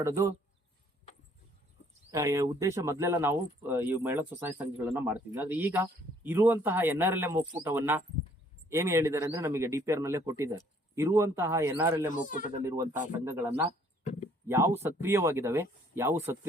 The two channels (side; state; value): both; normal; correlation 0.62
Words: ಉದ್ದೇಶ ಮೊದಲೆಲ್ಲ ನಾವು ಈ ಮಹಿಳಾ ಸ್ವಸಹಾಯ ಸಂಘಗಳನ್ನ ಮಾಡ್ತೀವಿ. ಆದ್ರೆ ಈಗ ಇರುವಂತಹ NRLM ಒಕ್ಕೂಟವನ್ನ ಏನ್ ಹೇಳಿದ್ದಾರೆ ಅಂದ್ರೆ ನಮಗೆ DPR ನಲ್ಲೇ ಕೊಟ್ಟಿದ್ದಾರೆ. ಇರುವಂತಹ NRLM ಒಕ್ಕೂಟದಲ್ಲಿರುವಂತಹ ಸಂಘಗಳನ್ನ ಯಾವ ಸಕ್ರಿಯವಾಗಿದ್ದಾವೆ, ಯಾವ